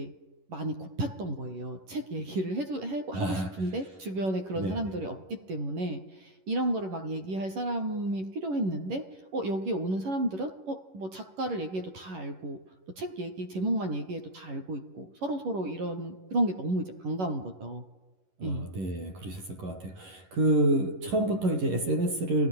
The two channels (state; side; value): late; left; 11 ms